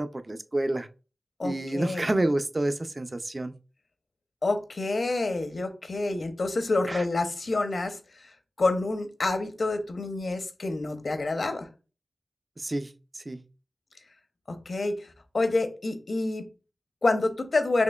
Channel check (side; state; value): both; normal; correlation 0.95